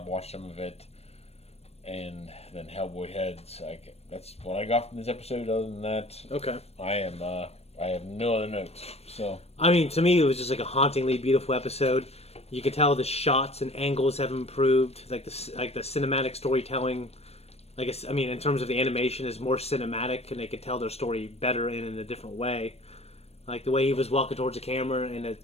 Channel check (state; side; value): late; right; 0.30 ms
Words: watched some of it, and then Hellboy Heads. That's what I got from this episode. Other than that, Okay. I have no other notes. So I mean, to me, it was just like a hauntingly beautiful episode. You could tell the shots and angles have improved. Like the cinematic storytelling. In terms of the animation, is more cinematic, and they could tell their story better in a different way. Like the way he was walking towards the camera, and